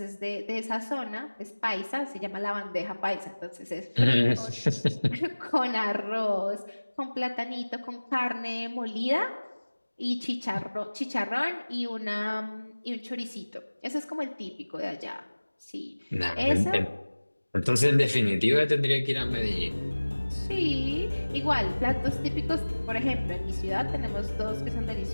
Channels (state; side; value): inverted; both; correlation -1.00